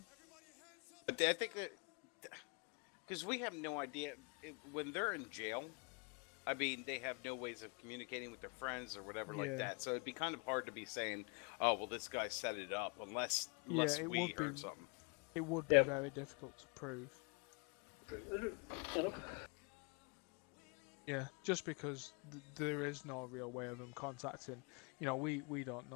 I think that because we have no idea when they're in jail. I mean, they have no ways of communicating with their friends or whatever like that. So it'd be kind of hard to be saying, "Oh, well, this guy set it up," unless we heard something. It would be very difficult to prove. Yeah, just because there is no real way of them contacting. You know, we don't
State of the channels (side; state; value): right; quieter; 34.1 dB